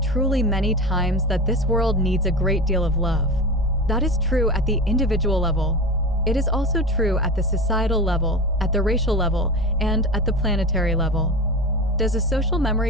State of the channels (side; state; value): both; normal; correlation 0.28